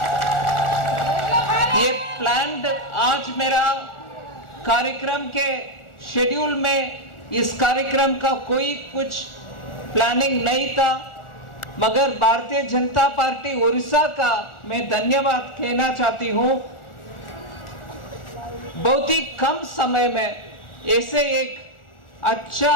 ये प्लान्ड आज मेरा कार्यक्रम के शेड्यूल में इस कार्यक्रम का कोई कुछ प्लानिंग नहीं था, मगर भारतीय जनता पार्टी उड़ीसा का मैं धन्यवाद कहना चाहती हूँ। बहुत ही कम समय में ऐसे एक अच्छा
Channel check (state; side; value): late; right; 1.4 ms